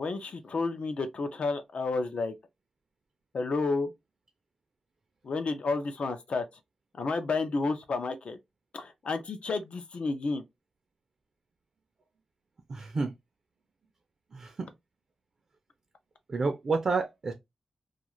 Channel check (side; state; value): both; normal; correlation 0.85